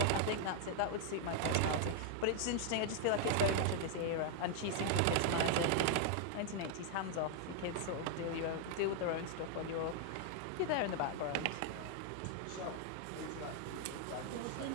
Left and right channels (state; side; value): different; both; correlation 0.00